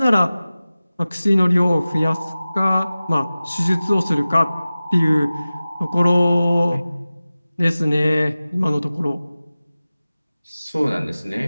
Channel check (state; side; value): inverted; both; correlation -0.97